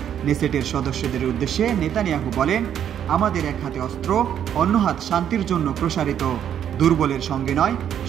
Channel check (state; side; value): quieter; left; 9.5 dB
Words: নেসেটের সদস্যদের উদ্দেশ্যে নেতানিয়াহু বলেন, আমাদের এক হাতে অস্ত্র, অন্য হাত শান্তির জন্য প্রসারিত। দুর্বলের সঙ্গে নয়,